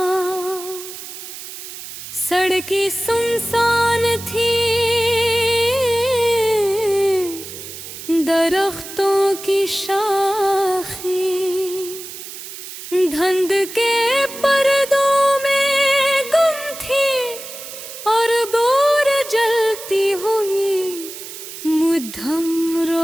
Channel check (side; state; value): right; noise; hiss, 12 dB below the sound